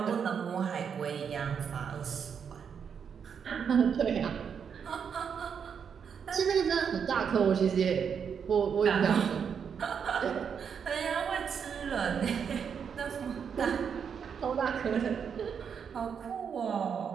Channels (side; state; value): left; quieter; 7.1 dB